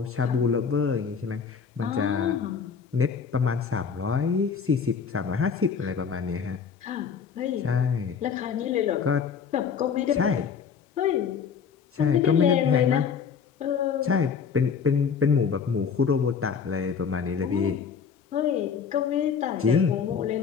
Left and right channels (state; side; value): quieter; right; 6.4 dB